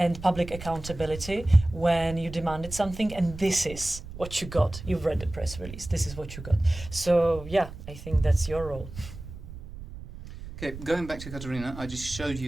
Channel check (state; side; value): noise; right; rumble, 13 dB below the sound